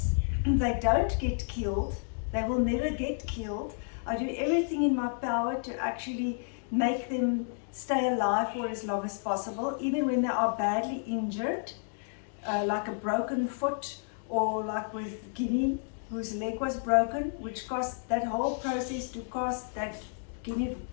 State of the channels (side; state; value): right; silent; digital silence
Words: They don't get killed. They will never get killed. I do everything in my power to actually make them stay alive for as long as possible, even when they are badly injured, like a broken foot, or like with Guinea, whose leg was broken, which cost, that whole process to cost that